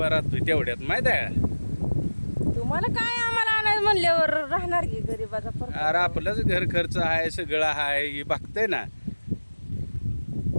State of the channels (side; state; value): both; inverted; correlation -1.00